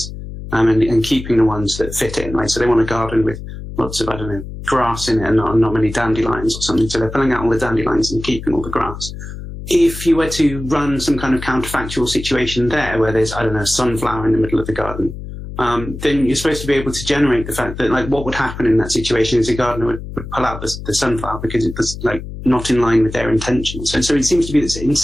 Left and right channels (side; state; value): left; noise; hum, 10 dB below the sound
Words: and keeping the ones that fit in, right? So they want a garden with lots of, grass in it and not many dandelions or something. So they're pulling out all the dandelions and keeping all the grass. If you were to run some kind of counterfactual situation there, where there's, a sunflower in the middle of the garden, then you're supposed to be able to generate the fact that, what would happen in that situation is a gardener would pull out the sunflower because it was, not in line with their intentions. So it seems to be that in